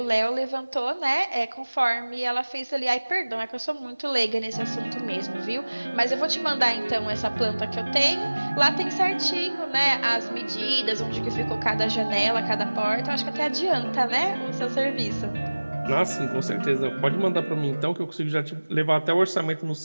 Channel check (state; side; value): inverted; both; correlation -1.00